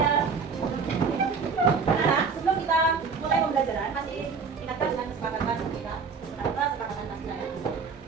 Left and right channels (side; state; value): left; quieter; 5.3 dB